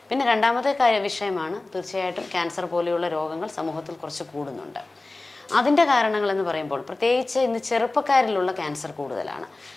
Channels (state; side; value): quieter; right; 3.1 dB